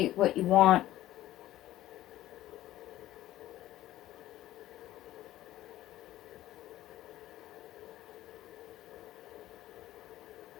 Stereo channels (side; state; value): right; quieter; 14.5 dB